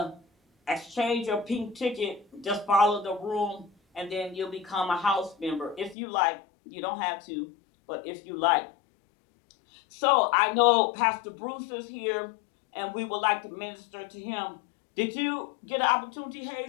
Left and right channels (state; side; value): drops out; right; at 6.0 s